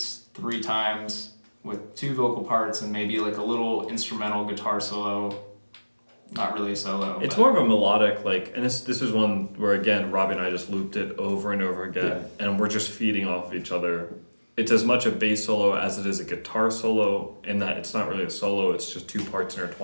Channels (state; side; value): inverted; both; correlation -1.00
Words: 3 times with 2 vocal parts and maybe like a little instrumental guitar solo. not really a solo. It's but- more of a melodic, like, and this is one where, again, Robbie and I just looped it over and over again, and we're just feeding off of each other. It's as much a bass solo as it is a guitar solo, in that it's not really a solo, it's just two parts